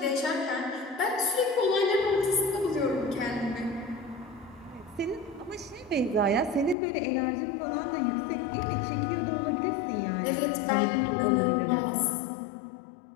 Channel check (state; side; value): drops out; right; at 6.8 s